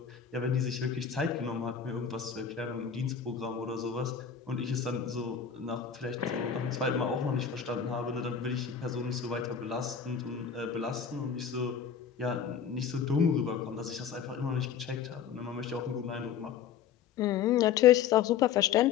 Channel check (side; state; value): right; quieter; 7.6 dB